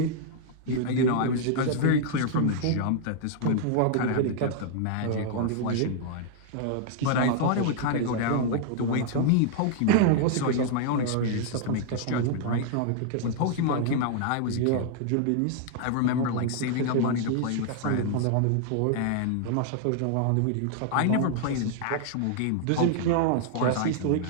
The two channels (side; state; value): both; different; correlation -0.01